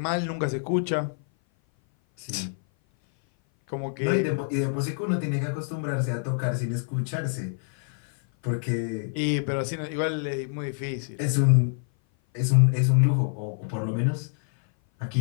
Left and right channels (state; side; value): silent; right; 57 dB below the other